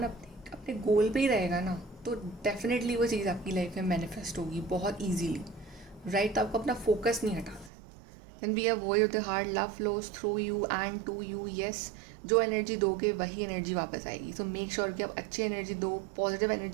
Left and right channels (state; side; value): drops out; left; at 7.7 s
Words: अपने गोल पे ही रहेगा ना, तो डेफिनेटली वो चीज़ आपकी लाइफ में मैनिफेस्ट होगी बहुत ईजीली, राइट। तो आपको अपना फोकस नहीं हटाना। Then be a voice of the heart, love flows through you and to you. Yes, जो एनर्जी दोगे वही एनर्जी वापस आएगी। सो मेक श्योर कि आप अच्छी एनर्जी दो, पॉजिटिव